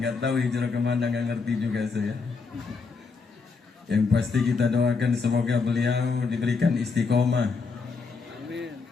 nggak tahu hijrah kemana, nggak ngerti juga saya. Yang pasti kita doakan semoga beliau diberikan istiqomah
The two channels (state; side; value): quieter; right; 4.6 dB